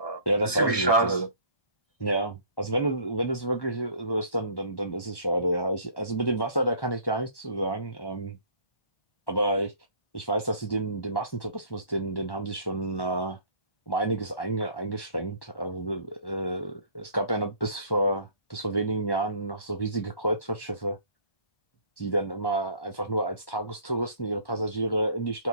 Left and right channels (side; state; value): right; late; 1.1 ms